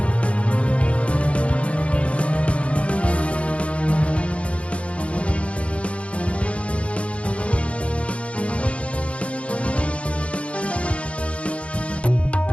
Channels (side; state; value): right; late; 0.062 ms